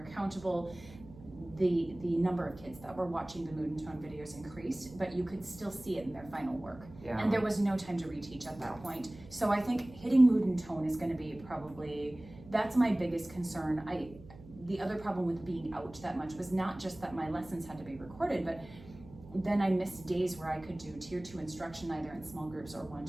accountable. The number of kids that were watching the mood and tone videos increased, but you could still see it in their final work. And there was no time to reteach at that point. So I think hitting mood and tone is gonna be probably, that's my biggest concern. The other problem with being out that much was not just that my lessons had to be recorded, but then I missed days where I could do tier 2 instruction either in small groups or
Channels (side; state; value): right; noise; hum, 19 dB below the sound